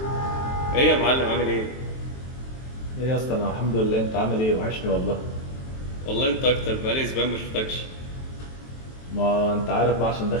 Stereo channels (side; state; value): right; late; 23 ms